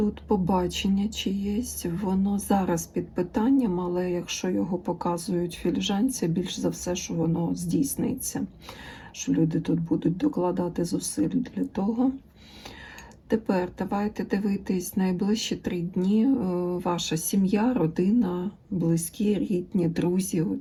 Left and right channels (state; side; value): identical; both; correlation 1.00